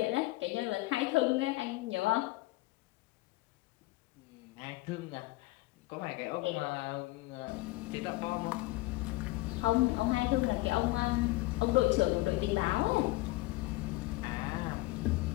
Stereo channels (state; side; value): quieter; right; 20.2 dB